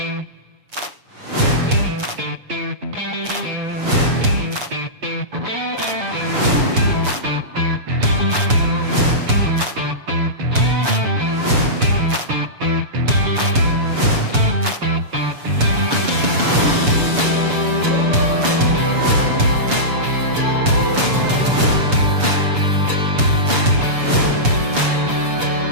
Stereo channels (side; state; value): left; late; 7.0 ms